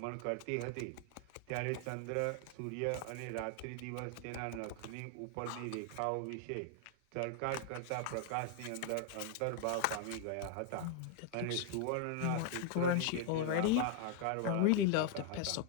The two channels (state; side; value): different; both; correlation 0.00